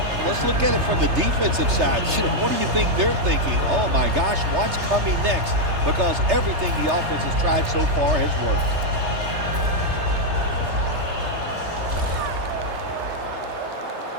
Let's look at it from the defensive side. What do you think they're thinking? Oh, my gosh, what's coming next? Because everything the offense has tried so far has worked.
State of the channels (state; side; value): late; left; 3.3 ms